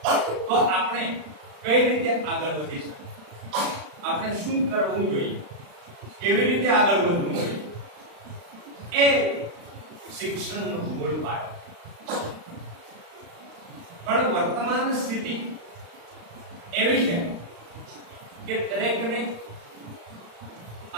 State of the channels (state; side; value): late; left; 35 ms